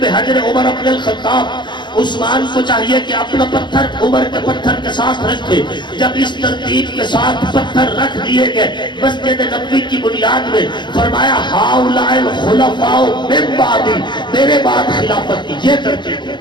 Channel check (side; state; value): right; late; 0.22 ms